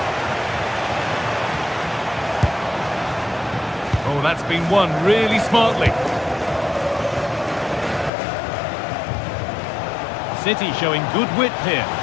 Oh, that's been won really smartly. City showing good width here.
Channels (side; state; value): right; drops out; at 8.1 s